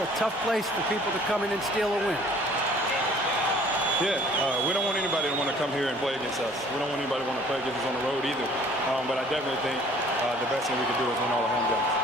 tough place for people to come in and steal a win. Yeah, we don't want anybody to want to come here and play against us. We don't want anybody to want to play against us on the road either. But I definitely think the best thing we can do is win all the home games.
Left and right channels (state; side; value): normal; both; correlation 0.54